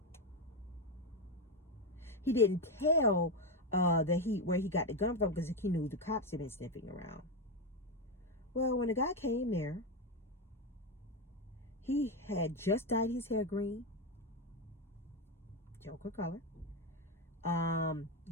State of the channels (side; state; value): both; normal; correlation 0.10